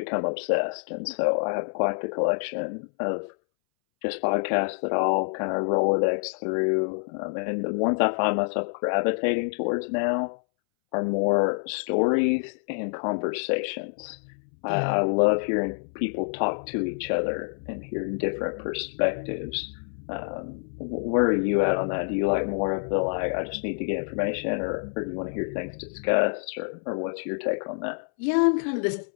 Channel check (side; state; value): right; silent; 60 dB below the other